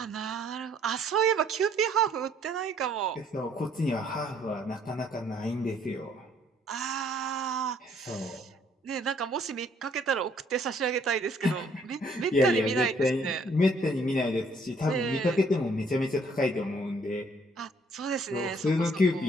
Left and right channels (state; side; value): normal; both; correlation 0.63